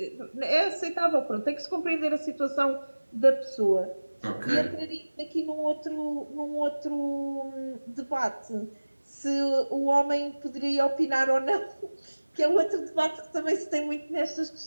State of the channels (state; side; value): inverted; both; correlation -1.00